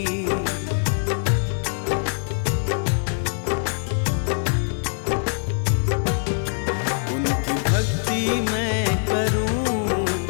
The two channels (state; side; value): silent; right; digital silence